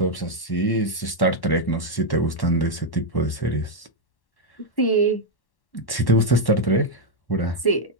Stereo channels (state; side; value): late; right; 1.1 ms